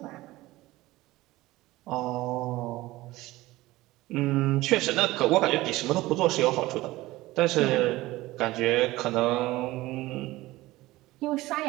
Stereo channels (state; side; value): quieter; left; 18.3 dB